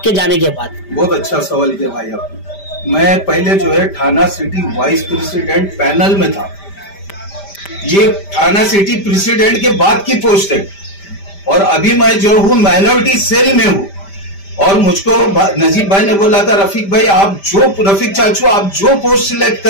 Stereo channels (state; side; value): late; right; 5.1 ms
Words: जाने के बाद। बहुत अच्छा सवाल किया भाई आपने। मैं पहले जो है थाना सिटी वाइस प्रेसिडेंट पैनल में था, ये थाना सिटी प्रेसिडेंट के बाद की पोस्ट है, और अभी मैं जो हूँ माइनॉरिटी सेल में हूँ। और मुझको नजीब भाई ने बोला था, रफीक भाई रफीक चाचू आप जो पोस्ट सिलेक्ट